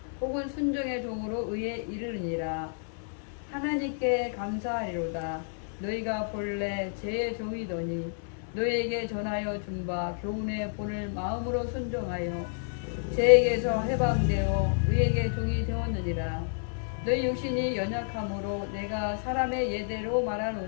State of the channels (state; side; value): silent; right; 58 dB below the other